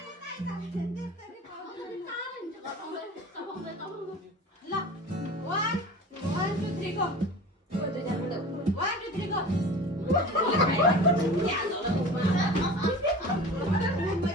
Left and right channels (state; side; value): normal; both; correlation 0.37